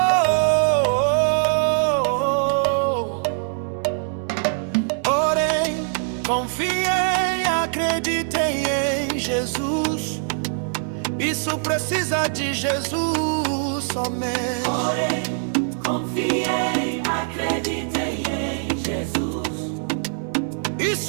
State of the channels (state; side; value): silent; left; digital silence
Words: Orem, confiem, acreditem em Jesus. Isso precisa de Jesus somente. Orem, confiem, acreditem em Jesus.